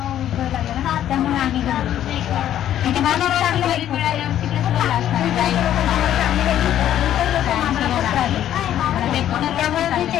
लागला ना त्यामुळे आम्ही त्यामुळे मी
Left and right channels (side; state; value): right; quieter; 11.3 dB